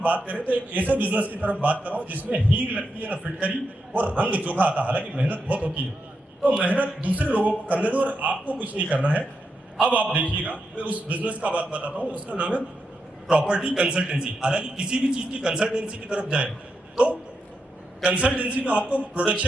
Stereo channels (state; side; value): normal; both; correlation 0.85